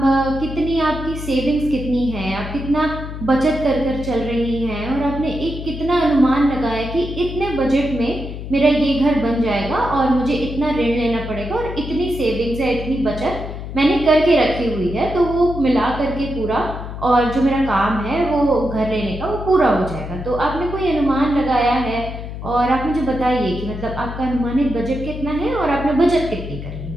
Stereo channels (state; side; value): noise; left; hum, 8 dB below the sound